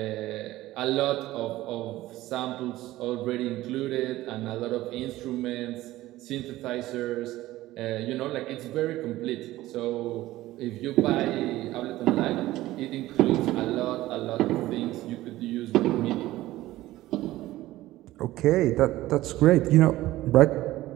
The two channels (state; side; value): quieter; left; 16.4 dB